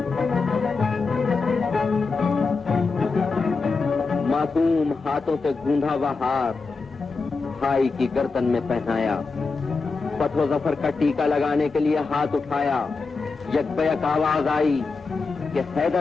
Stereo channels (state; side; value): quieter; right; 4.3 dB